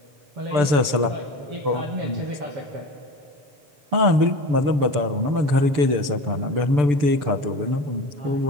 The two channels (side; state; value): left; late; 6.9 ms